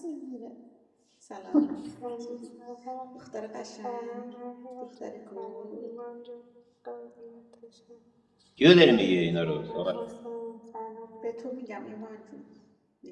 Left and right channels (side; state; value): both; identical; correlation 1.00